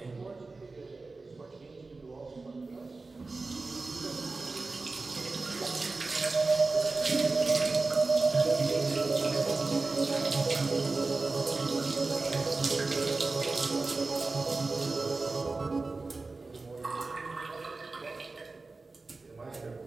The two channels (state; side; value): quieter; left; 3.7 dB